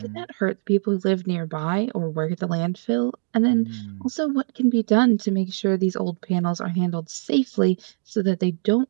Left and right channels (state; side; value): silent; left; digital silence